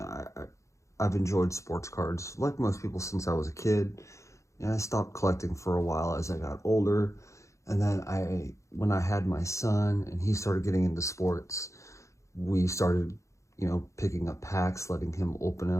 I've enjoyed sports cards like most people since I was a kid. I stopped collecting for a while as I got older. And then when I had my son and he started getting into sports, we started, picking up packs, letting him open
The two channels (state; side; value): late; right; 0.15 ms